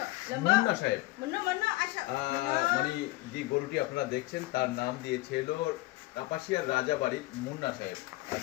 মুন্না সাহেব মানে যে গরুটি আপনারা দেখছেন তার নাম দিয়েছে হলো কাপাসিয়ার রাজাবাড়ির মুন্না সাহেব। আর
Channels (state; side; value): quieter; right; 20.0 dB